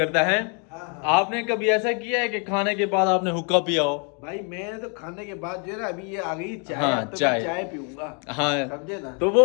है। आपने कभी ऐसा किया है कि खाने के बाद आपने हुक्का पिया हो? भाई मैं तो खाने के बाद जो है ना, अभी ये आ गई चाय। हाँ, तो चाय। मैं चाय पीऊंगा। हाँ समझे ना? तो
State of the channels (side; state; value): right; quieter; 37.8 dB